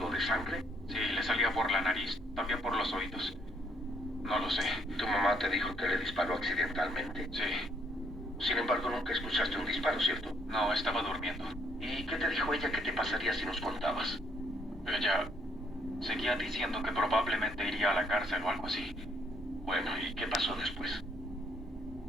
de sangre? Sí, le salía por la nariz, también por los oídos. No lo sé. ¿Tu mamá te dijo que le disparó accidentalmente? Sí. Sin embargo, nunca escuchaste un disparo, ¿cierto? No, estaba durmiendo. ¿Y qué te dijo ella que te pasaría si nos contabas? Ella seguía diciendo que probablemente iría a la cárcel o algo así. Bueno, ¿y qué pasó después?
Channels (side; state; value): both; normal; correlation 0.69